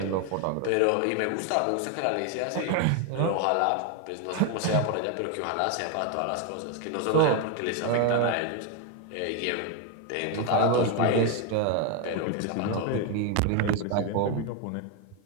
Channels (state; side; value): different; both; correlation 0.01